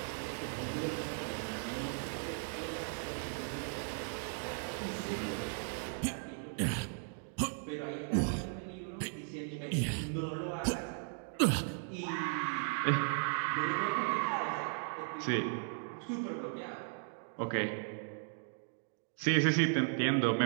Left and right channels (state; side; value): silent; left; 53 dB below the other